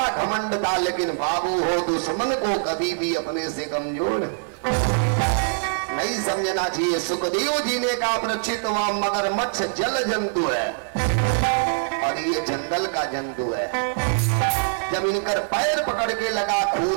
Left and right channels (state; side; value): silent; left; 62 dB below the other